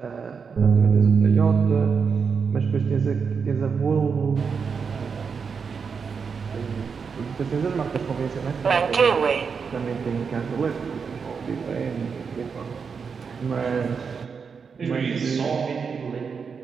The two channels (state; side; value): quieter; left; 5.8 dB